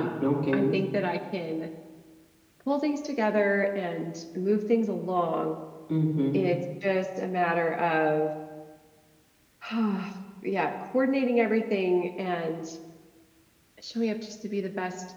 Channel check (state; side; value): identical; both; correlation 1.00